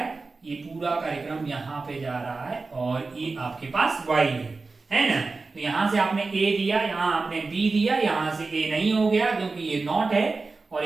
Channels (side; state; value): left; quieter; 3.9 dB